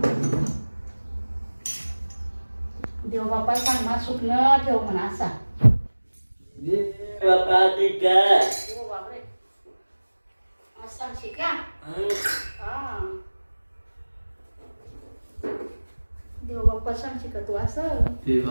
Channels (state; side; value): inverted; both; correlation -1.00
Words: देव बाप्पा सांग मा सुकणं ठेव म्हणा असा बापा ते काय हो बापरे असा शिका हा देव बाप्पा सांग शिका तू असं